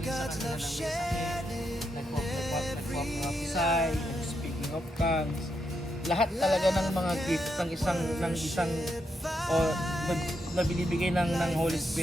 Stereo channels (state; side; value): normal; both; correlation 0.82